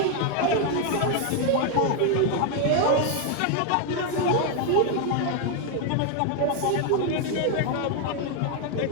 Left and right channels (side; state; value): both; different; correlation 0.01